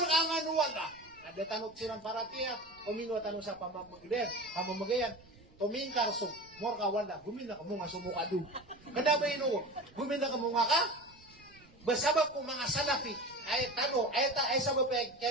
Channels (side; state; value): right; noise; rumble, 26 dB below the sound